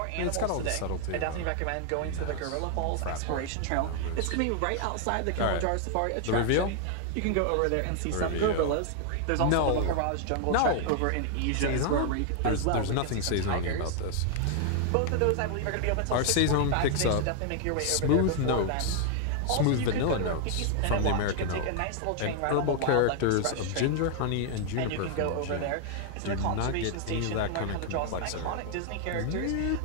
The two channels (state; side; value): different; both; correlation 0.00